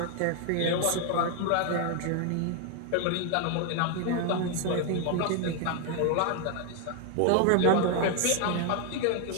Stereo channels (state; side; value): different; both; correlation 0.01